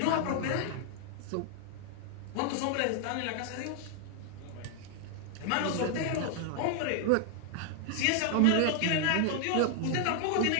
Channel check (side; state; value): both; different; correlation 0.00